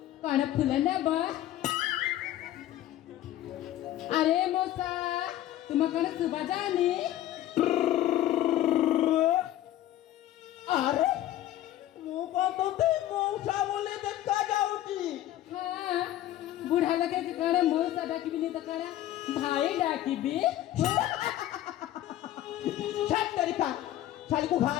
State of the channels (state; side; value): quieter; right; 13.4 dB